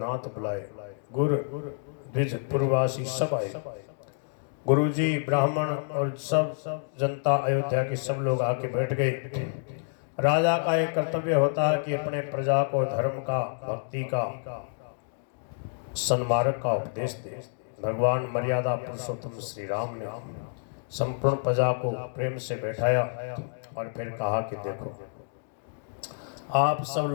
बुलाए, गुरु द्विज पूर्ववासी सब आए। गुरुजी, ब्राह्मण और सब जनता, अयोध्या के सब लोग आके बैठ गए। राजा का एक कर्तव्य होता है कि अपने प्रजा को धर्म का, भक्ति का, सन्मार्ग का उपदेश दे। भगवान मर्यादा पुरुषोत्तम श्री राम ने संपूर्ण प्रजा को प्रेम से बैठाया और फिर कहा कि देखो, आप सब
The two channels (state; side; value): silent; right; digital silence